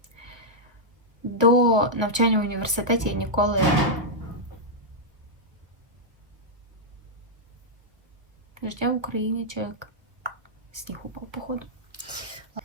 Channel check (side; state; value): left; late; 1.4 ms